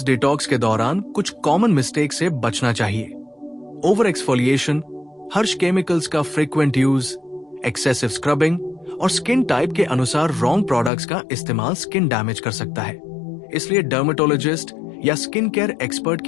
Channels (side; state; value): right; drops out; at 10.9 s